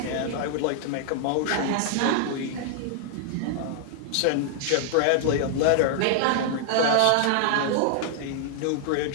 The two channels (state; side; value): different; both; correlation 0.00